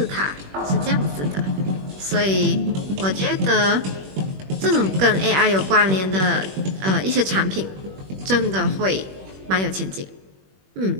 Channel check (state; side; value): late; left; 21 ms